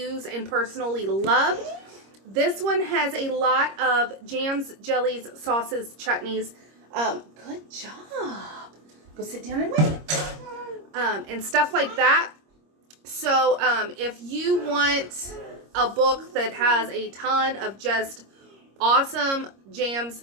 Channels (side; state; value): left; late; 26 ms